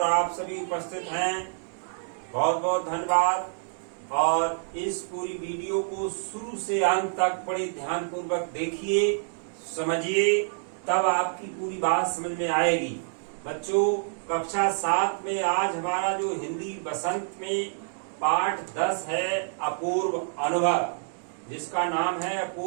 आप सभी उपस्थित हैं। बहुत बहुत धन्यवाद। और इस पूरी वीडियो को शुरू से अंत तक बड़े ध्यान पूर्वक देखिए, समझिए, तब आपकी पूरी बात समझ में आएगी। बच्चों, कक्षा 7 में आज हमारा जो हिंदी बसंत में पाठ 10 है, अपूर्व अनुभव, जिसका नाम है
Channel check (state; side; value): silent; left; digital silence